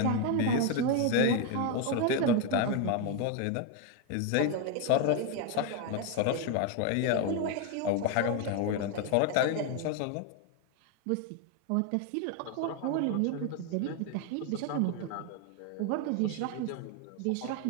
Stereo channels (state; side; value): different; both; correlation 0.01